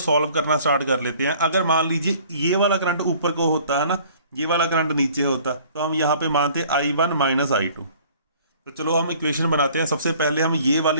करना स्टार्ट कर लेते हैं। अगर मान लीजिए ये वाला करंट ऊपर को होता है ना, ये वाला करंट नीचे होता, तो हम यहाँ पे मानते I1 माइनस I2। तो चलो हम इक्वेशन बनाते हैं। सबसे पहले हम ये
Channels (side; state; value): both; inverted; correlation -0.53